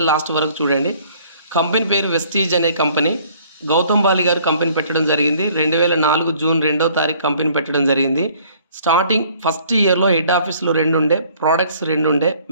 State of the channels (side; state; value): both; inverted; correlation -0.57